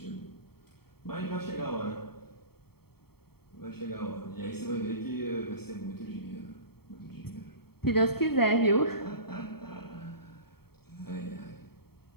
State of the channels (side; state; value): right; late; 0.95 ms